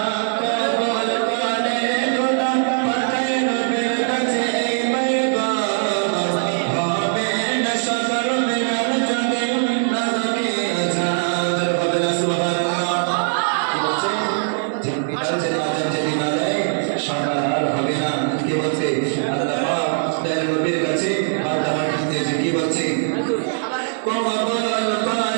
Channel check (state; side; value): silent; left; digital silence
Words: কমল কানে খোদা পাঠায় নবীর কাছে এই পয়গাম, হবে না সদর মিলার যদি না থাকে আজাদ। হবে না সুবহানাল্লাহ। কি বলছে? ঠিক বিকাল যদি আজান যদি না দেয় সকাল আর হবে না। কি বলছে? আল্লাহ পাক তার নবীর কাছে বারবার বলতেছে, কি বলছে? কমল